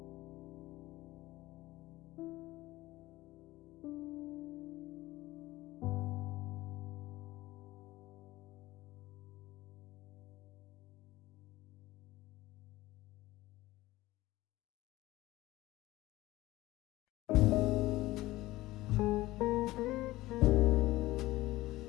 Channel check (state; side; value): quieter; right; 17.9 dB